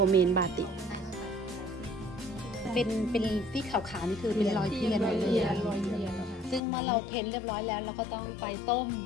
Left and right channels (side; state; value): right; drops out; at 6.6 s